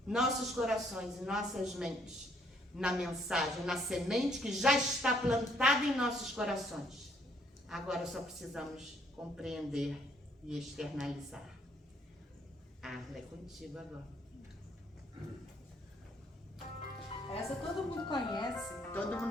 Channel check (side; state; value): both; normal; correlation 0.66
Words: nossos corações e nossas mentes na mensagem, na semente que já está plantada em nossos corações. Agora só precisamos compreender e externalizar. É contigo agora. Essa todo mundo conhece. Todo